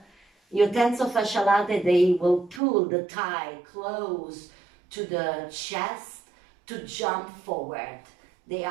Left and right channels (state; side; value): drops out; left; at 2.6 s